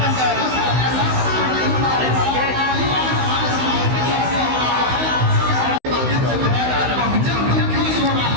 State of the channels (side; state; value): left; late; 16 ms